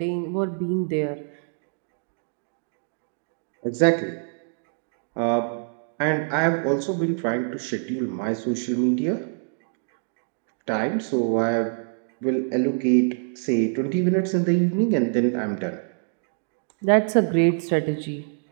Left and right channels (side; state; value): left; silent; digital silence